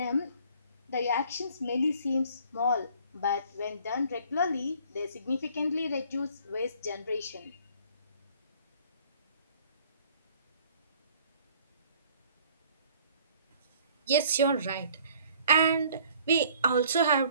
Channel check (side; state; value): both; inverted; correlation -0.56